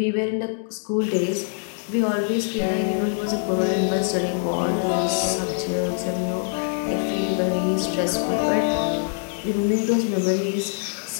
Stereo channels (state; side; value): silent; right; digital silence